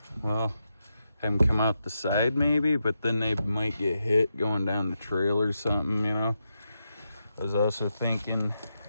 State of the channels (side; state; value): both; inverted; correlation -0.86